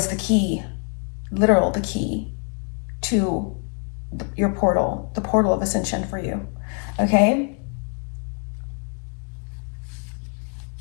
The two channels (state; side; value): quieter; right; 39.8 dB